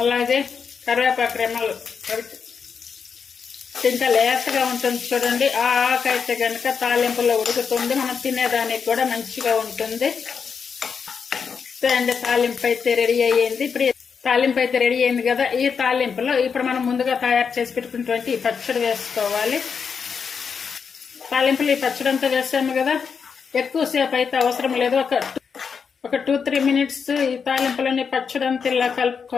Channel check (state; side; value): quieter; right; 6.2 dB